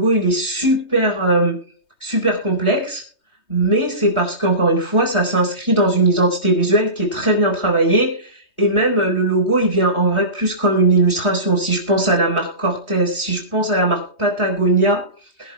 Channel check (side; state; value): right; late; 3.2 ms